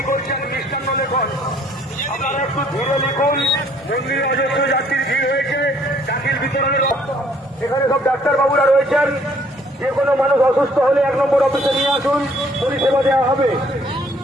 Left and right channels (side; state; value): both; normal; correlation 0.62